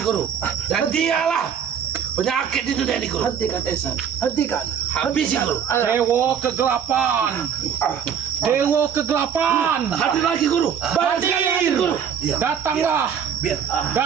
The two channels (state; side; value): quieter; left; 8.0 dB